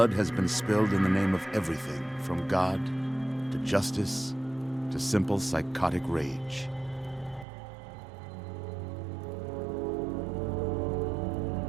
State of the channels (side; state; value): left; drops out; at 7.5 s